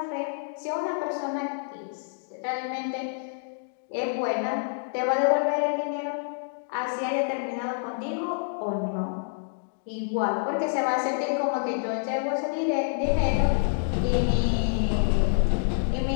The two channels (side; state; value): right; silent; digital silence